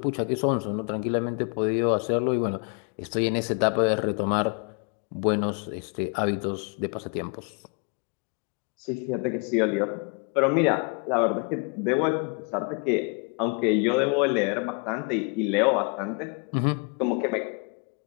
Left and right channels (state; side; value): quieter; right; 37.7 dB